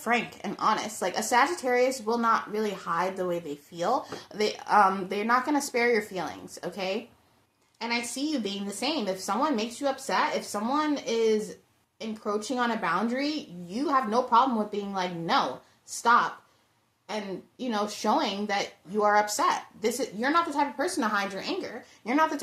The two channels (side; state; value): both; identical; correlation 1.00